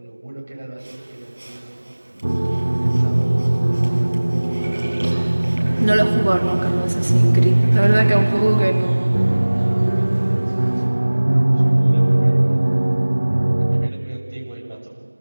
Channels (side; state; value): both; inverted; correlation -1.00